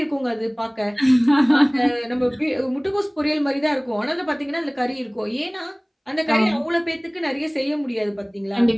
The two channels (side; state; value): both; identical; correlation 1.00